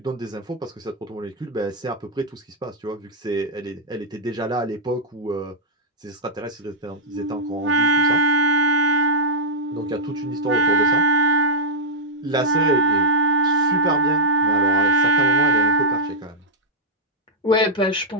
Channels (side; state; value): both; normal; correlation -0.07